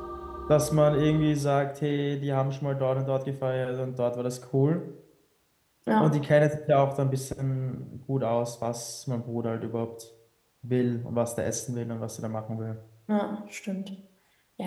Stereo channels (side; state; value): both; identical; correlation 1.00